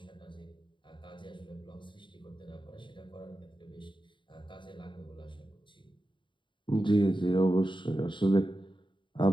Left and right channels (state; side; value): late; right; 0.23 ms